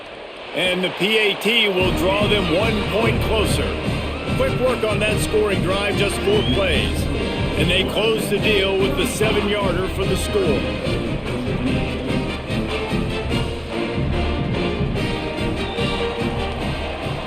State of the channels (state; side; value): identical; both; correlation 1.00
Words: And the PAT will draw them 1 point closer. Quick work on that scoring drive, just 4 plays. And they close the deal with the 7-yarder for the score.